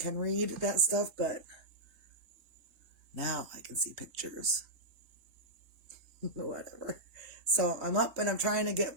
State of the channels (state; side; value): late; left; 4.2 ms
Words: read that stuff, but now I can see pictures. Whatever. So I'm up and I'm trying to get